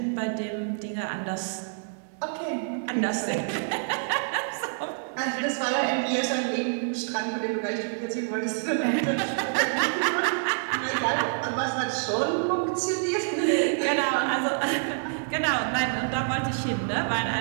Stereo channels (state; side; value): silent; left; digital silence